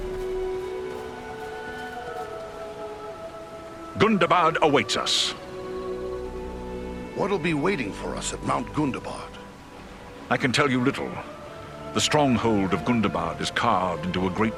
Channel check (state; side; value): identical; both; correlation 1.00